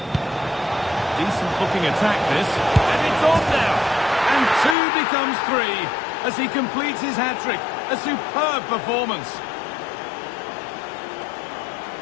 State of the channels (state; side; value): drops out; right; at 4.8 s